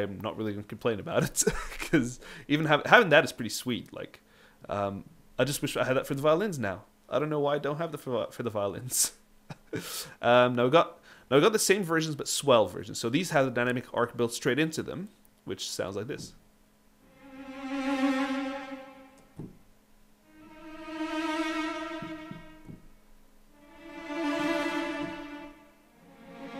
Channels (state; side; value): identical; both; correlation 1.00